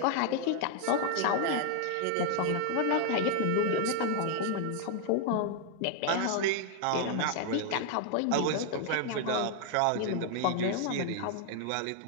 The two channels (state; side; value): different; both; correlation 0.00